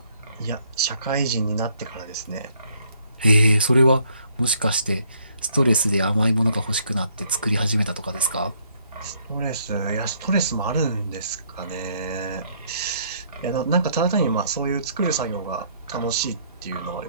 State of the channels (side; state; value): both; inverted; correlation -0.67